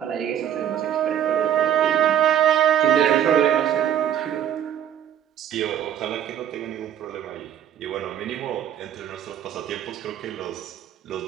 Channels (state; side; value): quieter; left; 10.0 dB